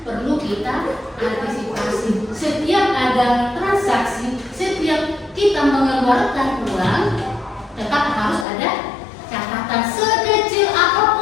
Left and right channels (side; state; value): right; drops out; at 8.5 s